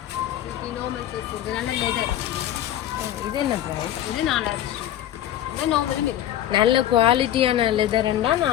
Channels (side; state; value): right; quieter; 12.0 dB